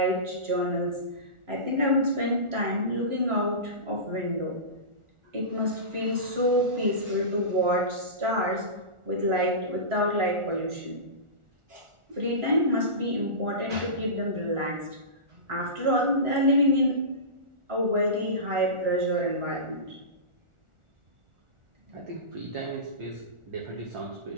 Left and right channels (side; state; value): left; late; 1.4 ms